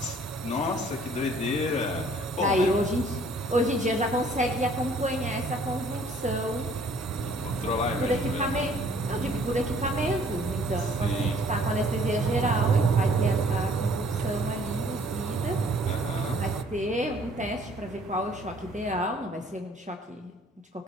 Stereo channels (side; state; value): both; normal; correlation 0.58